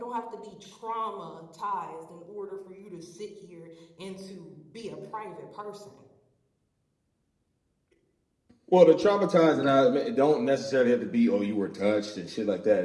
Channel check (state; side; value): identical; both; correlation 1.00